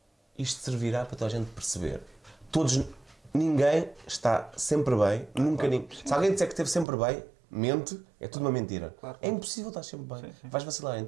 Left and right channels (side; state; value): left; drops out; at 6.9 s